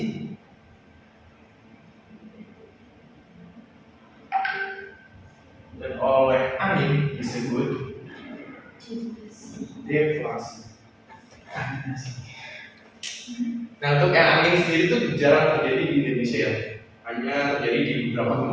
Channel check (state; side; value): identical; both; correlation 1.00